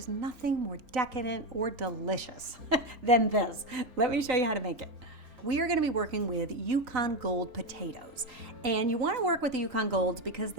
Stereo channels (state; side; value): late; left; 3.9 ms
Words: nothing more decadent or delicious than this. Let me show you how to make it. We are going to be working with Yukon Gold potatoes. And you want to work with the Yukon Golds because